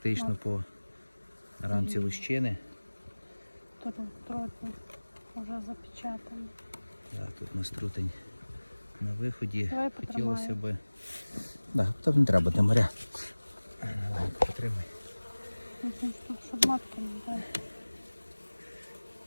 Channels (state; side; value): inverted; both; correlation -1.00